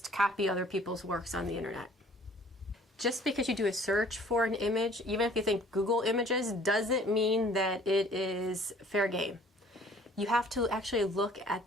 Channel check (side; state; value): both; normal; correlation 0.54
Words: copy other people's works on the internet. Just because you do a search for an image, even if you think Google Images, doesn't mean that it is fair game. You have to actually look